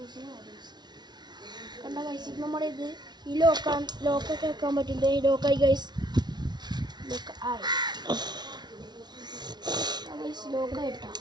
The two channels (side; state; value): left; late; 0.20 ms